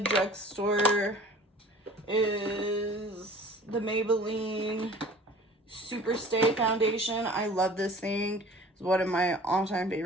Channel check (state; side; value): normal; both; correlation 0.46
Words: is the Maybelline Super Stay Foundation. I love this thing. It's one of my all-time